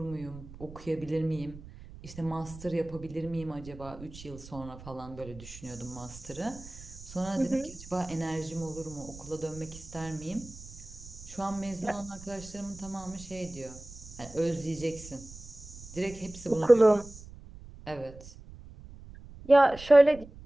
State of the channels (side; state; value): right; noise; rumble, 16 dB below the sound